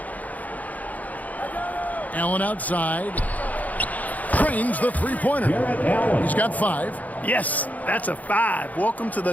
Allen outside. Trains the three-pointer. He's got 5. Yes, that's a 5. Welcome to the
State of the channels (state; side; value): late; right; 0.077 ms